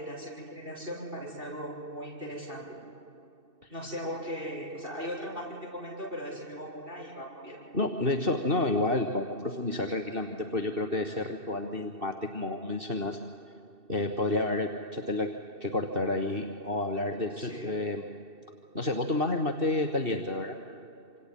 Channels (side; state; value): left; late; 2.7 ms